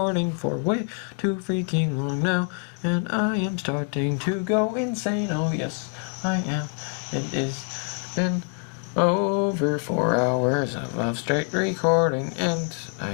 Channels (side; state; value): right; quieter; 37.4 dB